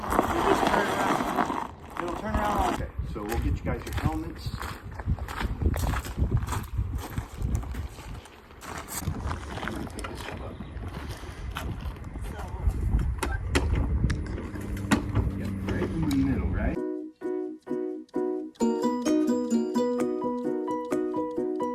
you just turn around. It'll turn around all day. So we'll get you guys your helmets.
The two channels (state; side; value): identical; both; correlation 1.00